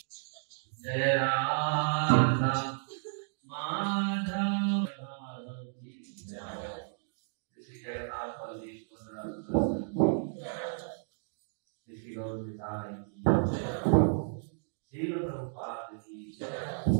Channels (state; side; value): silent; left; digital silence